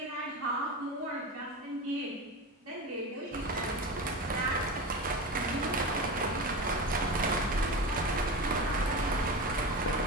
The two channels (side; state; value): both; normal; correlation 0.25